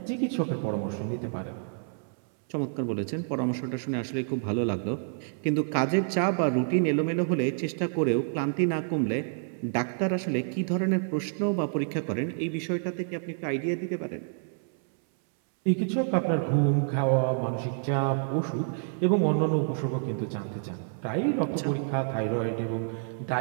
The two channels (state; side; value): silent; left; 59 dB below the other